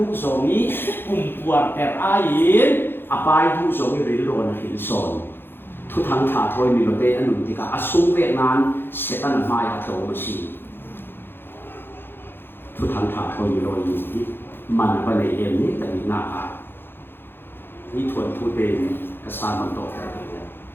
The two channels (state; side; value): late; right; 0.10 ms